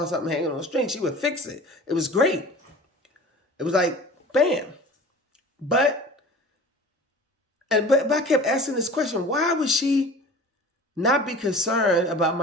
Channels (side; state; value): both; normal; correlation 0.40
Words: something hanging on a string, she would fix it. It was great. It was like, bam. But I kept asking this question, why would she not be concerned about